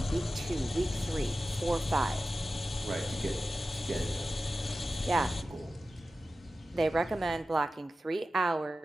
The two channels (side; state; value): both; normal; correlation 0.94